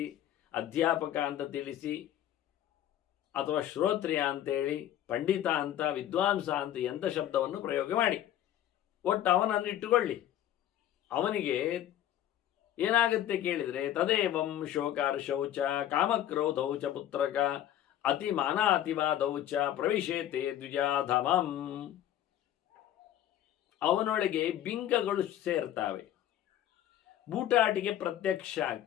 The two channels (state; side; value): quieter; right; 11.8 dB